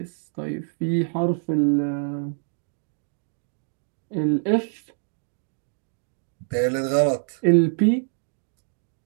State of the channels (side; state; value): left; silent; 58 dB below the other